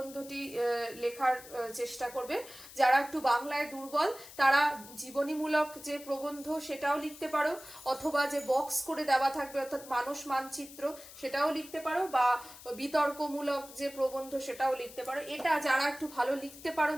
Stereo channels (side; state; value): left; noise; hiss, 17 dB below the sound